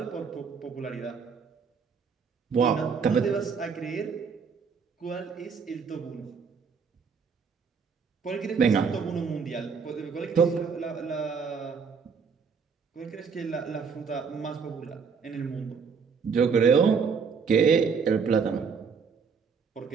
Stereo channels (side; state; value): left; quieter; 5.8 dB